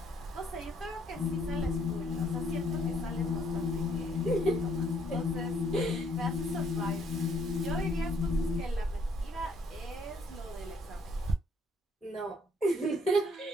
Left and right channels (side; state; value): both; normal; correlation 0.66